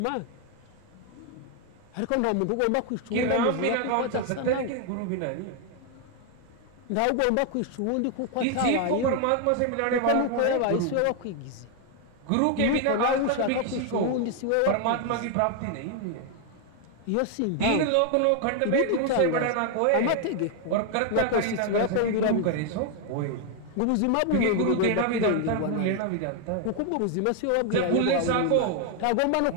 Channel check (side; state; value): both; different; correlation 0.00